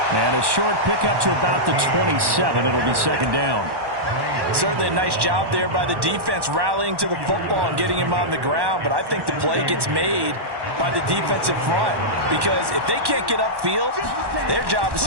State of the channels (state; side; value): late; left; 1.1 ms